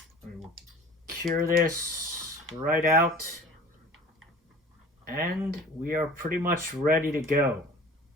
We will cure this right out. And we are pretty much ready to go.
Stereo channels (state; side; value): normal; both; correlation 0.43